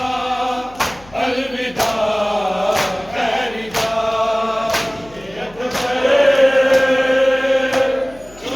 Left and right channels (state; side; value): noise; left; hum, 24 dB below the sound